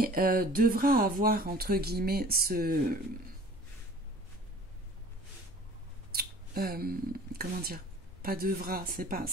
devra avoir entre guillemets ce... comment dire? Pas devra, c'est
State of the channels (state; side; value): normal; both; correlation 0.47